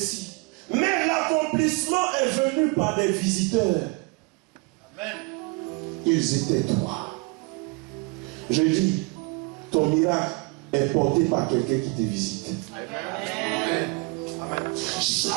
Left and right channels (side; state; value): left; quieter; 28.6 dB